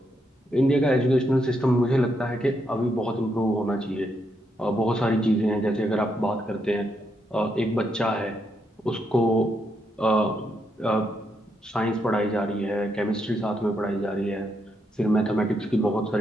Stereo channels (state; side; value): normal; both; correlation 0.79